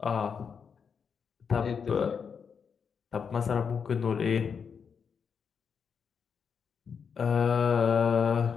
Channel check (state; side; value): quieter; right; 6.4 dB